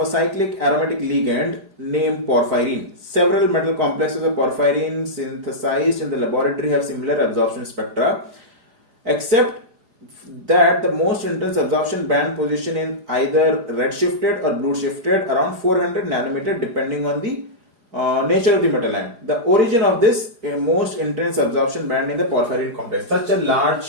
cyclic aromatic ligand named porphyrin. Several metal complexes of porphyrin synthesized in the laboratory have similar absorption spectra, except that the most intense absorption band position is either red shifted or blue shifted around 400 nanometer depending on the nature of the metal ion. The origin of this most intense absorption band in the porphyrin complex. Such a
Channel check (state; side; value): late; left; 4.8 ms